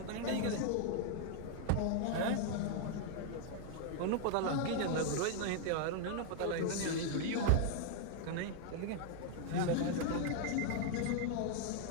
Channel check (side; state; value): both; different; correlation 0.00